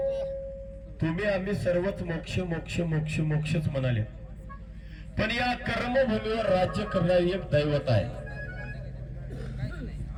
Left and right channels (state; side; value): identical; both; correlation 1.00